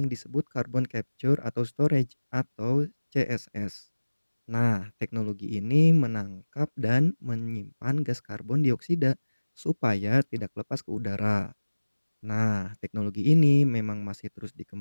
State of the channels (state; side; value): inverted; both; correlation -1.00